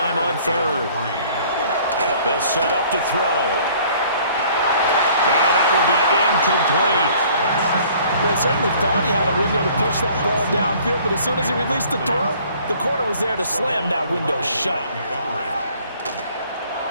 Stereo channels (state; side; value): inverted; both; correlation -0.55